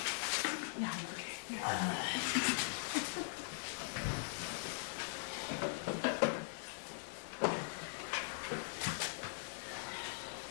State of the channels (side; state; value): right; silent; digital silence